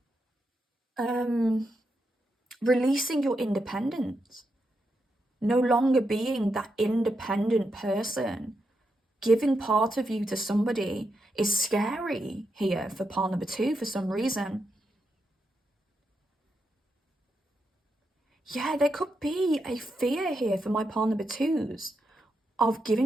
releasing your independence. No longer being that independent person. Giving part of you to somebody is scary here for pile number two for some reason. Yeah, there could be a fear here for my pile number twos of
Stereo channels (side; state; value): both; normal; correlation 0.84